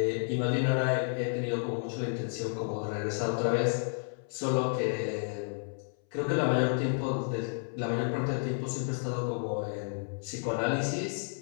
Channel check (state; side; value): silent; right; 57 dB below the other